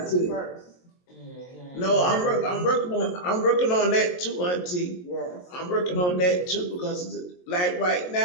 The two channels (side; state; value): right; late; 22 ms